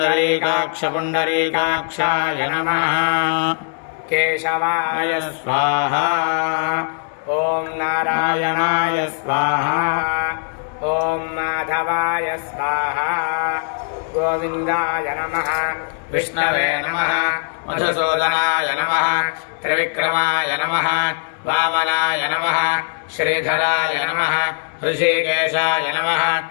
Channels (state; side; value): silent; right; digital silence